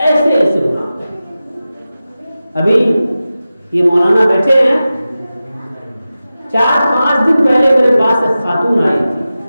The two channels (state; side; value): inverted; both; correlation -0.94